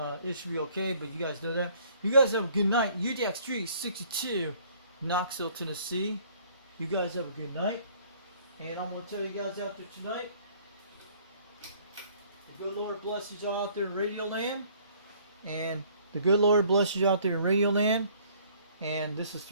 should be okay, but you guys know that. You guys have a good night. UDX362, Knoxville, Tennessee. You guys have a good night. And I'm gonna tell you guys out there tonight, the good Lord blesses you out there in Radio Land. And the good Lord blesses you out there in Radio Land. And this is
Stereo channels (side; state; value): both; inverted; correlation -0.58